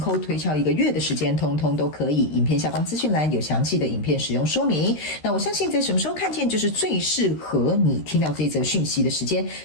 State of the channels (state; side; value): late; right; 13 ms